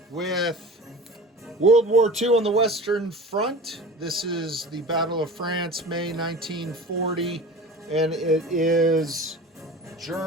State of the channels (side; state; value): both; normal; correlation 0.36